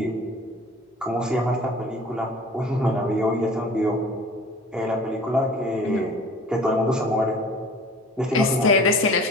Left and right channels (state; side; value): normal; both; correlation 0.45